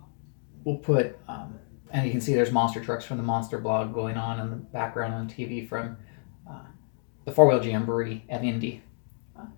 we'll put, and you can see there's monster trucks from the Monster blog going on in the background on TV from the 4-wheel jamboree at Indy.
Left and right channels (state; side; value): silent; right; 59 dB below the other